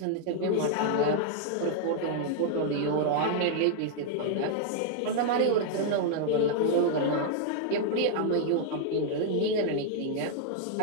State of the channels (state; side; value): different; both; correlation -0.01